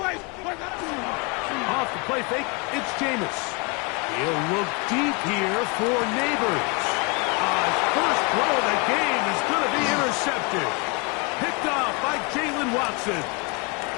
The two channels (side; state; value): right; quieter; 30.3 dB